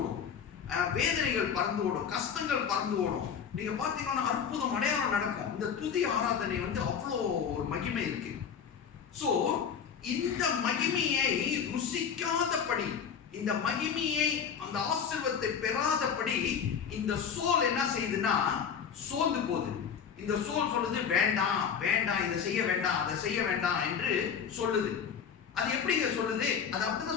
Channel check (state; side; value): quieter; right; 7.2 dB